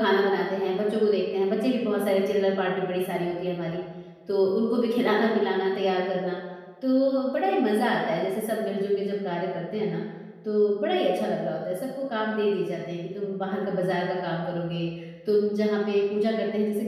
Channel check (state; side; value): identical; both; correlation 1.00